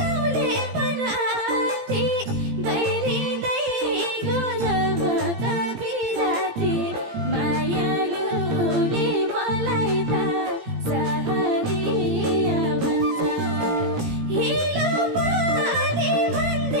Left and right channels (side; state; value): left; late; 17 ms